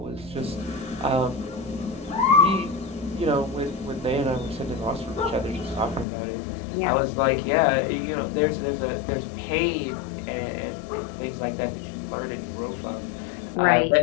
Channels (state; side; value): drops out; right; at 6.1 s